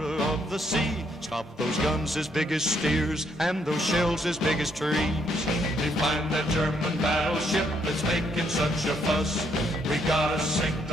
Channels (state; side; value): normal; both; correlation 0.72